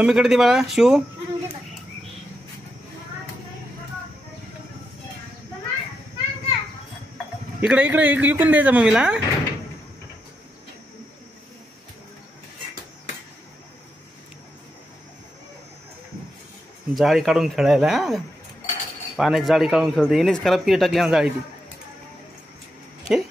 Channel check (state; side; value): normal; both; correlation 0.84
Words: दे बाळा। शिव इकडे इकडे इकून द्यायचा मम्मीला। जाळी काढून खेळायला, पाण्याची जाळी काढून खेळते, येणेच खराब केली टाकली ना जाळी ती।